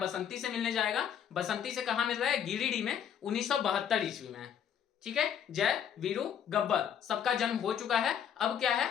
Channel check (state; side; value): quieter; right; 8.8 dB